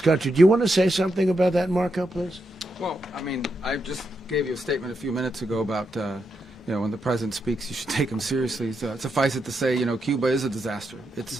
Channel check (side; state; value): both; normal; correlation 0.83